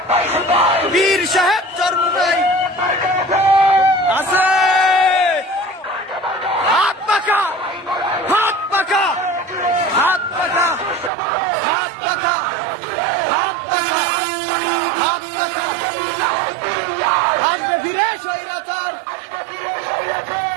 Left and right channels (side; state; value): left; drops out; at 11.1 s